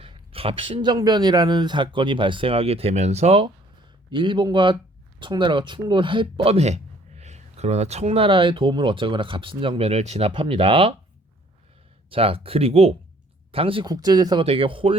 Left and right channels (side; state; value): both; normal; correlation 0.59